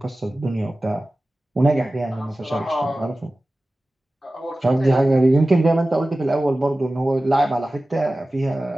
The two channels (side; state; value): both; normal; correlation 0.96